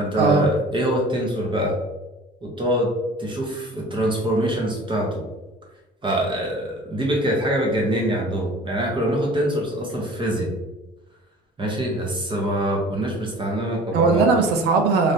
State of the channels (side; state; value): both; normal; correlation 0.44